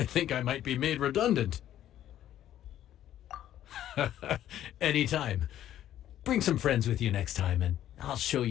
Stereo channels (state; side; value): quieter; right; 11.9 dB